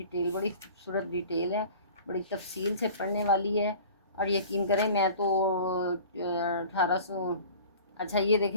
بڑی خوبصورت ڈیٹیل ہے، بڑی تفصیل سے پڑھنے والی ہے. اور یقین کریں میں تو 1800 اچھا یہ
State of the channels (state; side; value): inverted; both; correlation -0.43